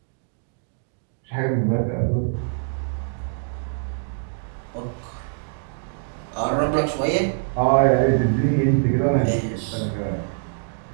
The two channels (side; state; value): left; silent; digital silence